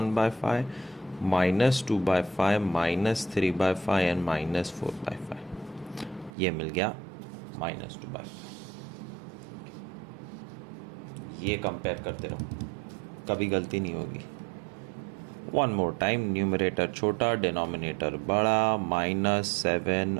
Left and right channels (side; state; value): left; drops out; at 6.3 s